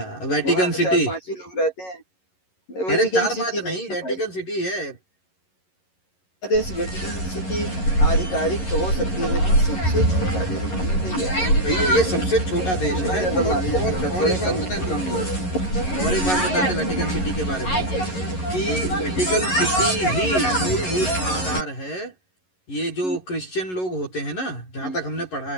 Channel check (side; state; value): right; late; 11 ms